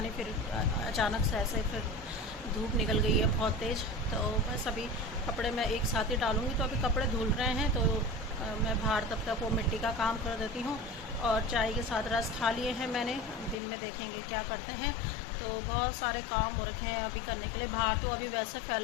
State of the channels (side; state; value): right; drops out; at 13.6 s